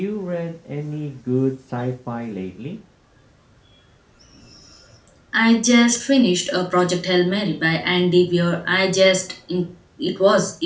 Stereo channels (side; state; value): both; identical; correlation 1.00